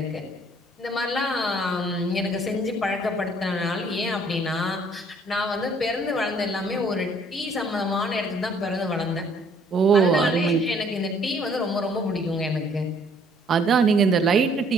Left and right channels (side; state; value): both; normal; correlation 0.61